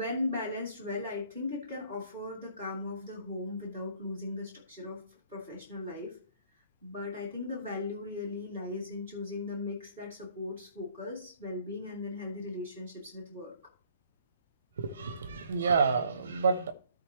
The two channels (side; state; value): both; inverted; correlation -0.60